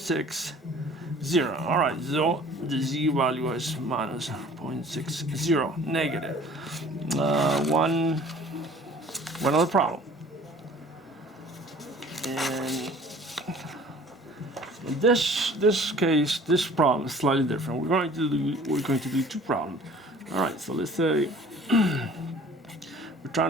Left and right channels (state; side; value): normal; both; correlation 0.49